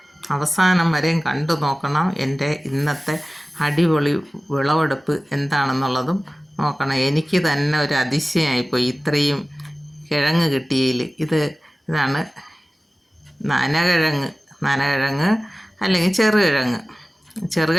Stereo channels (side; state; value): both; normal; correlation 0.97